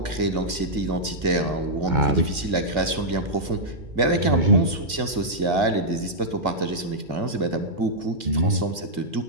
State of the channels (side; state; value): left; late; 2.2 ms